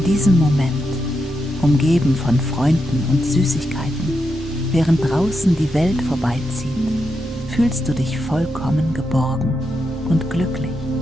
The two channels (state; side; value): normal; both; correlation 0.85